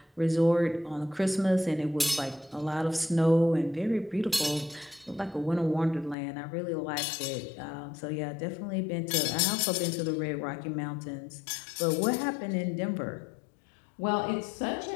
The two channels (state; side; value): drops out; right; at 6.2 s